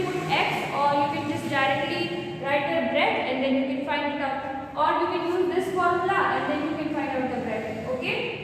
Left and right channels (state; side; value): identical; both; correlation 1.00